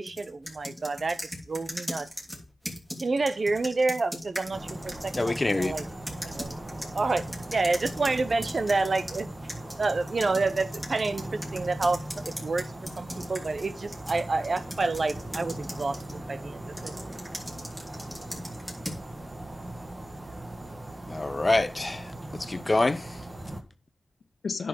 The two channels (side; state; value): both; normal; correlation 0.95